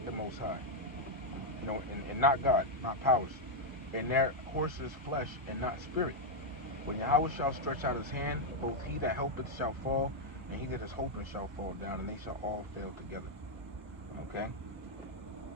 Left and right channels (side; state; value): both; normal; correlation -0.01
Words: the Most High, and not God, not powers. And their horses flesh, and not spirit. When Yahweh shall stretch out his hand, both he that helpeth shall fall, and he that is hoping shall fall down, and they shall all fail together. Okay?